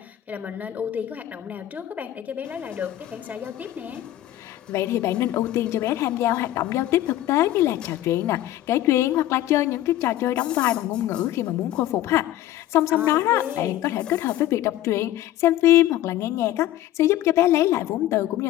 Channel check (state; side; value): quieter; right; 13.8 dB